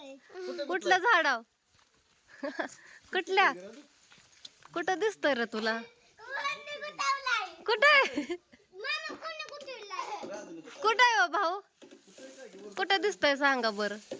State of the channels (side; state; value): both; identical; correlation 1.00